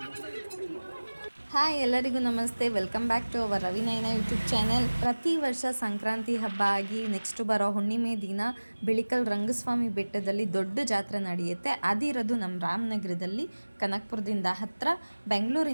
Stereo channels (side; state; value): both; inverted; correlation -1.00